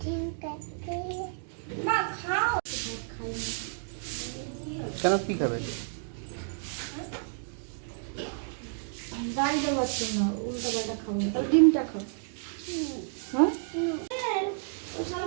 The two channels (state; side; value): silent; left; digital silence